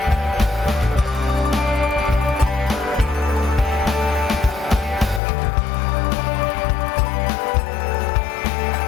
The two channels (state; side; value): drops out; right; at 5.2 s